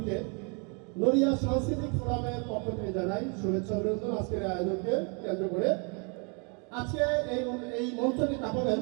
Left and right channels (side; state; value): left; quieter; 35.5 dB